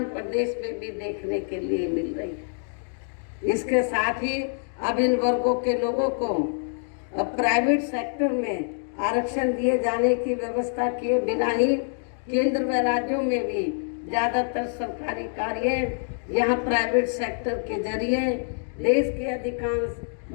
प्रदेश में भी देखने के लिए मिल रही है। इसके साथ ही अब इन वर्गों के लोगों को प्राइवेट सेक्टर में आरक्षण दिए जाने की व्यवस्था किए बिना ही केंद्र व राज्यों में भी ज़्यादातर सरकारी कार्य यहाँ प्राइवेट सेक्टर के जरिए देश के अधिकांश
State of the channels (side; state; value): right; silent; digital silence